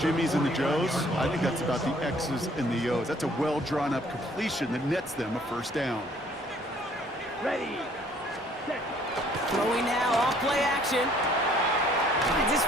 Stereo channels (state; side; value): normal; both; correlation 0.59